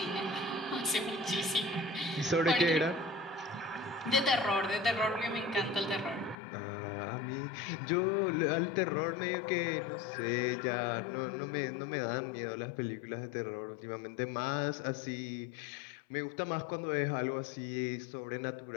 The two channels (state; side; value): drops out; right; at 6.4 s